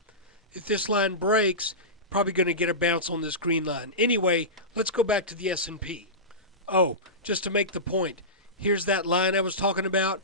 if this line breaks, probably going to get a bounce on this green line. Anyway, let's go back to the S&P. Oh, just to make the point, here's that line I was talking about.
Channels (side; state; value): both; normal; correlation -0.18